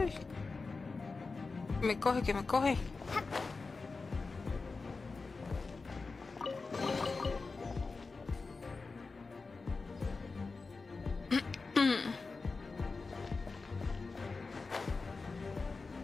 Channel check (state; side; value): quieter; right; 4.1 dB